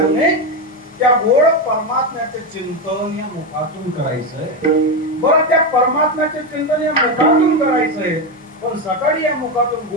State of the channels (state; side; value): normal; both; correlation 0.11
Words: त्या गोड परमात्म्याचे चिंतन या मुखातून करायचंय. बरं त्या परमात्म्याचे चिंतन या मुखातून करायचंय, पण सकाळी या मुखातून